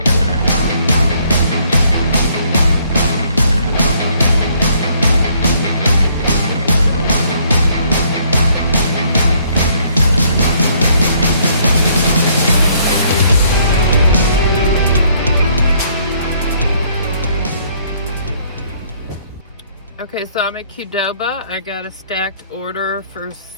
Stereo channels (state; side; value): inverted; both; correlation -0.65